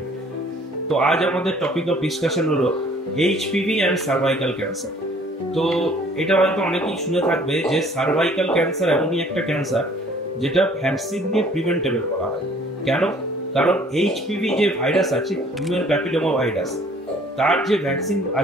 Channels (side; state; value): both; normal; correlation 0.56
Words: তো আজ আমাদের টপিক অফ ডিসকাশন হলো এইচপিভি অ্যান্ড সার্ভাইকাল ক্যান্সার। তো এটা হয়তো অনেকেই শুনে থাকবে যে সার্ভাইকাল ক্যান্সার এমনই একটা ক্যান্সার যেটা ভ্যাকসিন দিয়ে প্রিভেন্টেবল করা হয়। কেন? কারণ এইচপিভি যে ভাইরাস আছে, হিউম্যান প্যাপিলোমা ভাইরাস, তার যে ভ্যাকসিন